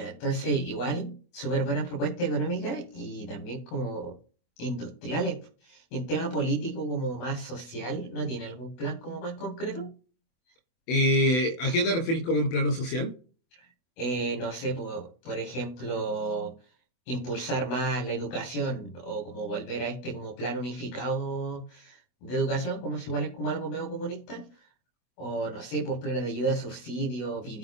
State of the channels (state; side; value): late; right; 24 ms